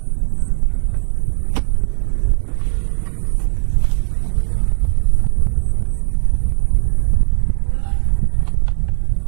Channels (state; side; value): silent; left; digital silence